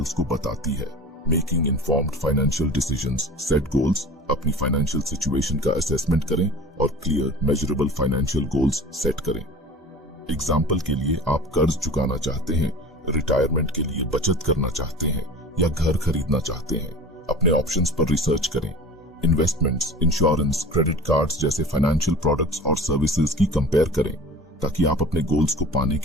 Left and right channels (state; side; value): normal; both; correlation 0.39